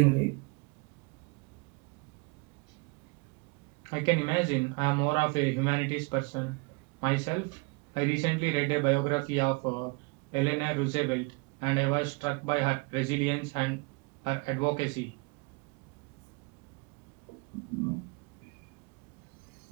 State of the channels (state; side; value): quieter; left; 29.5 dB